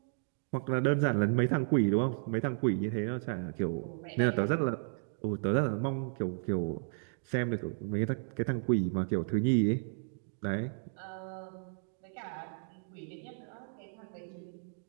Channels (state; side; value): silent; left; digital silence